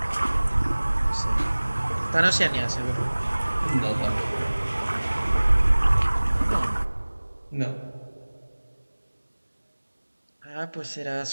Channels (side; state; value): both; inverted; correlation -1.00